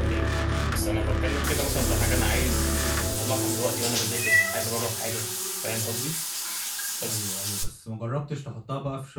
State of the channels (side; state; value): both; identical; correlation 1.00